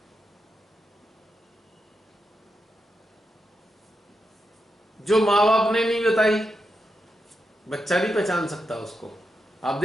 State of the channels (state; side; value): normal; both; correlation 0.86